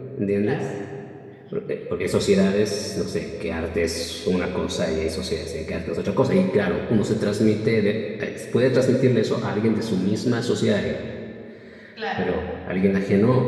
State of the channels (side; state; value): both; identical; correlation 1.00